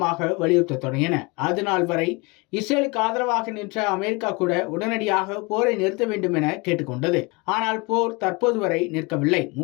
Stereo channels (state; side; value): quieter; right; 27.1 dB